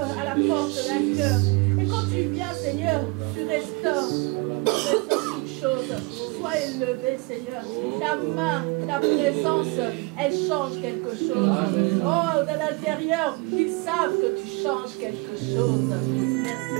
à la porte d'un cœur. Et quand tu viens, Seigneur, tu restaures. Tu restaures toutes choses. Sois élevé, Seigneur. Ta main, ta présence, elle change quelque chose. Oh, de l'intérieur, ils savent que tu changes quelque chose. Merci.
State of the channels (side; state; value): left; quieter; 26.0 dB